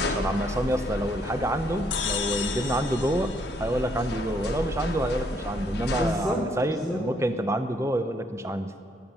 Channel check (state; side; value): normal; both; correlation 0.70